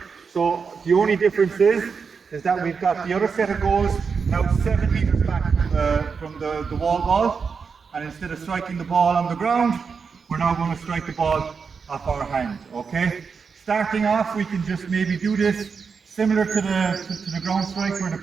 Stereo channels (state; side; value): quieter; left; 5.6 dB